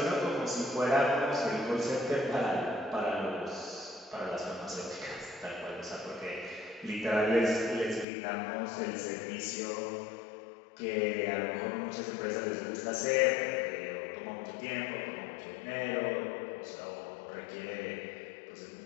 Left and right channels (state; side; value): drops out; right; at 8.1 s